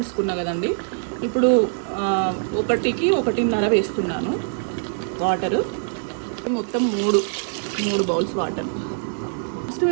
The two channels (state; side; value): silent; left; digital silence